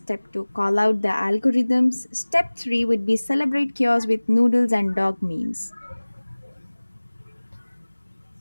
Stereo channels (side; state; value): both; inverted; correlation -1.00